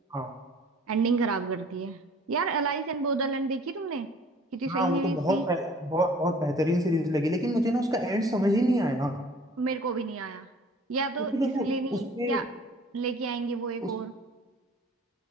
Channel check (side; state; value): both; normal; correlation 0.51